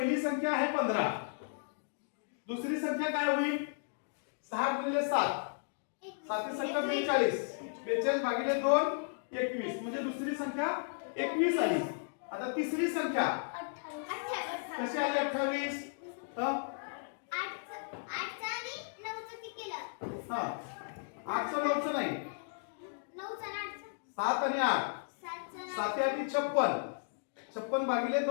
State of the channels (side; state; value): right; silent; digital silence